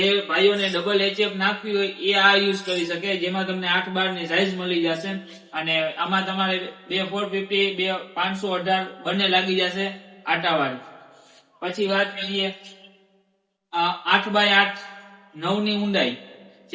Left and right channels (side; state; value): both; identical; correlation 1.00